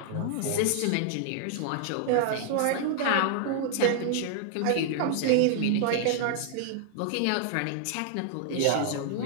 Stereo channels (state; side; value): different; both; correlation 0.00